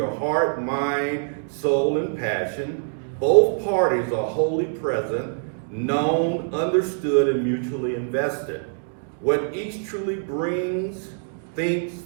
heart, mind, soul, and passion. Both parties are wholly present, known, understood, and mutually invested. What each truly brings, thinks,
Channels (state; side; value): silent; left; digital silence